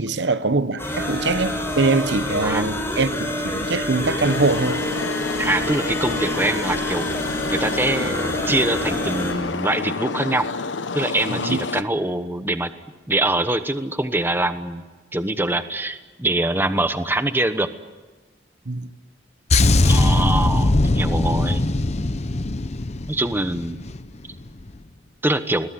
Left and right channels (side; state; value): both; normal; correlation 0.49